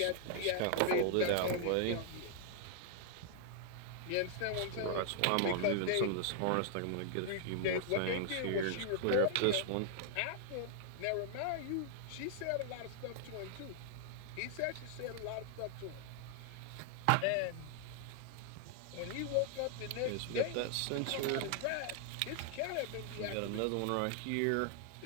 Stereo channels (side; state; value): both; different; correlation 0.00